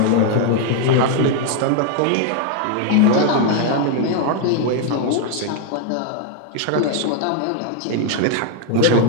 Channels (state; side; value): different; both; correlation 0.00